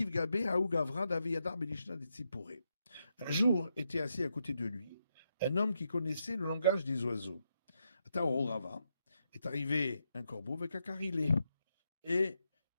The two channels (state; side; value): inverted; both; correlation -0.82